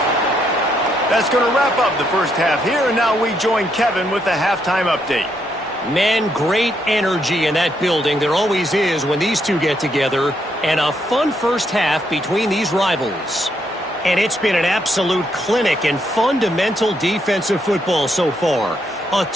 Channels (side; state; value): both; normal; correlation 0.76